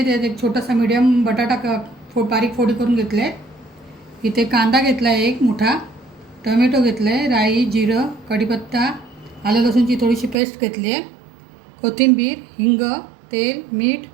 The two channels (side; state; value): left; drops out; at 10.4 s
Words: त्यात एक छोटासा मीडियम बटाटा बारीक फोडी करून घेतले. इथे कांदा घेतला आहे एक मोठा, टोमॅटो घेतलं आहे, राई, जिरं, कढीपत्ता, आलं लसूणची थोडीशी पेस्ट घेतली आहे, कोथिंबीर, हिंग, तेल, मीठ